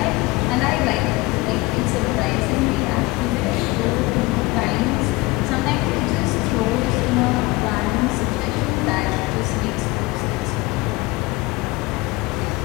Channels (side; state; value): right; quieter; 22.3 dB